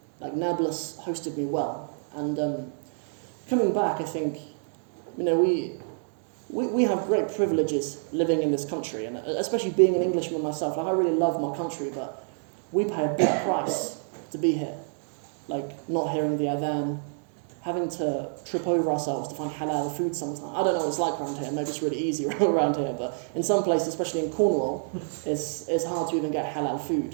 Like, Nablus hosted me well. And coming back, I think, we have great privileges living in this country, and especially being an Englishman myself. Like I really love my country, but we pay a big price to be here. Like not hearing the adhan, having to trip over ourselves to find halal food sometimes. I don't know what it's like around here. Maybe it's really easy around here, but in some places, especially in Cornwall, it's hard to even get halal food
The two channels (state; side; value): silent; left; digital silence